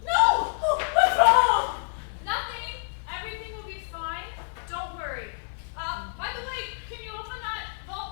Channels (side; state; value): right; silent; 60 dB below the other